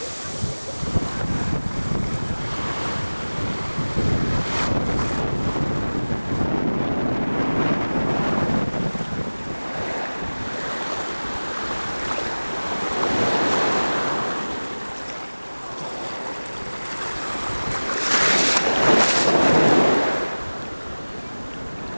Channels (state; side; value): inverted; both; correlation -1.00